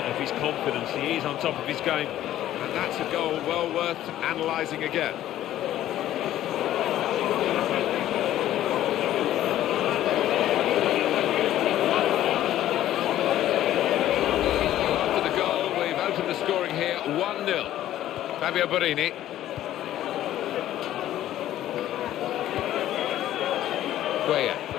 his confidence. He is on top of his game. And that's a goal well worth analysing again. After the goal, we've opened the scoring here, 1-0. Fabio Borini. Cuellar.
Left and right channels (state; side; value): quieter; right; 12.9 dB